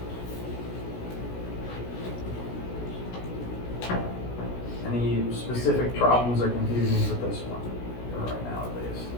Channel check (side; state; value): right; late; 16 ms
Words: Any specific problems or confusions with this one, for right now at least?